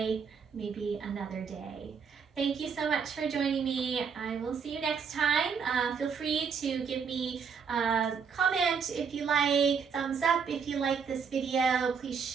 maybe another day. Thank you so much for joining me. I will see you next time. Feel free to give me a comment if you like, thumbs up if you like this video. Please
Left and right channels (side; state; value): left; quieter; 6.2 dB